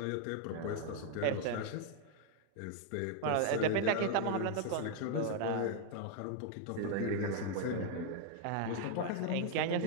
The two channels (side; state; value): both; different; correlation 0.00